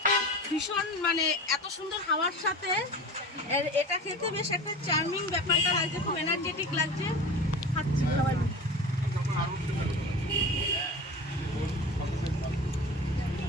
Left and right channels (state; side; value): normal; both; correlation 0.33